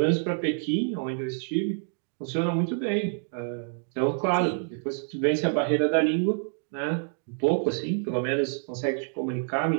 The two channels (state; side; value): silent; left; 60 dB below the other